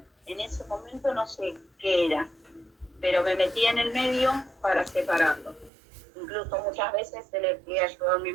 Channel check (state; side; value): drops out; left; at 5.7 s